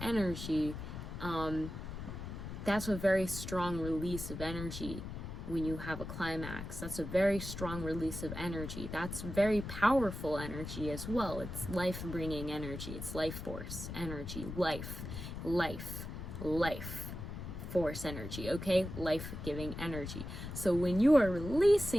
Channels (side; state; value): left; noise; rumble, 7 dB below the sound